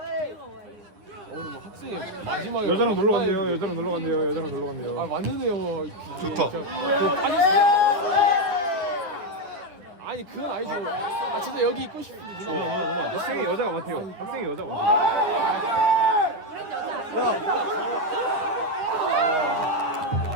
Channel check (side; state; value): left; late; 9.8 ms